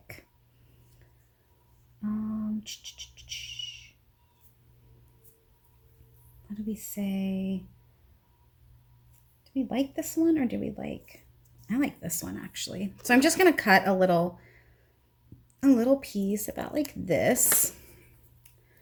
What do we say? Do we like this one, or do we like, I like this one actually. So I'm just going to cut a little piece about like this.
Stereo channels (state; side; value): identical; both; correlation 1.00